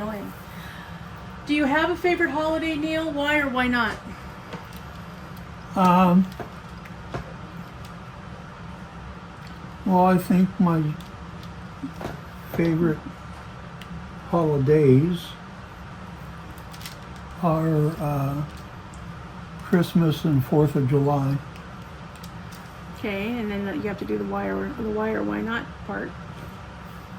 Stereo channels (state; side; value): identical; both; correlation 1.00